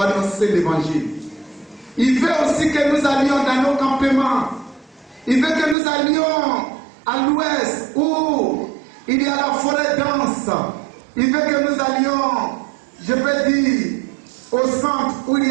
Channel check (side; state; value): left; drops out; at 5.8 s